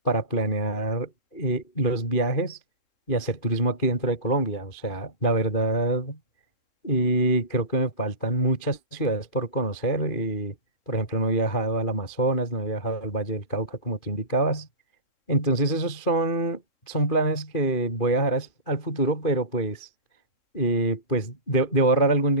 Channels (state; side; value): late; right; 2.5 ms